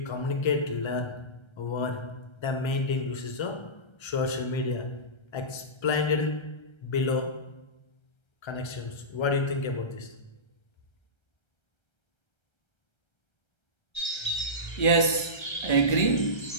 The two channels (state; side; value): late; right; 1.3 ms